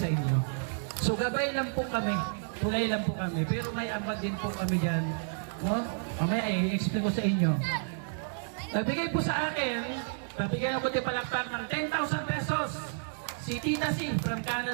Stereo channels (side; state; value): left; silent; digital silence